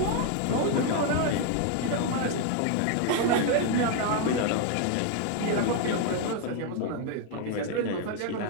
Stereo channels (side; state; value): both; different; correlation 0.01